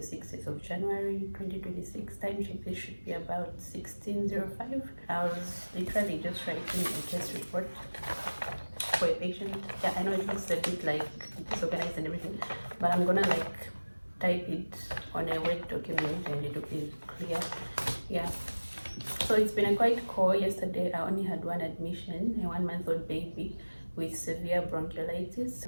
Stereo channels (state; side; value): inverted; both; correlation -1.00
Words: of January 2026. Time check, this should be about 16:05. I was literally just writing a case report for a patient. Yeah, I know it looks a bit like disorganized and everything, but I'm gonna like type it on a Word document and it will be clear. Yeah. So it's been a quite call. Yesterday I only had one admission, a 1-month-old baby with severe bronchiolitis.